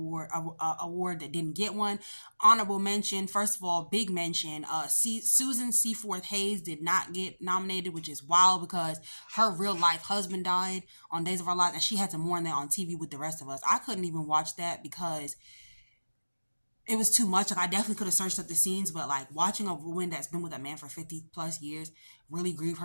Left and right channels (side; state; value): both; inverted; correlation -1.00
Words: that didn't get one? Honorable mention, first of all, big mention, Susan Seaforth Hayes did not get nominated, which is wild because her real life husband died on Days of Our Lives and she had to mourn that on TV with the rest of us. I couldn't even watch that because it was too much. Like, I definitely could have searched up the scenes, but like watching a woman that's been with a man for 50 plus years really grieve